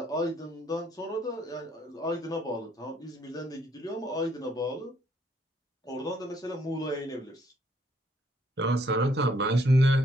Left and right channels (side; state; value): both; normal; correlation 0.68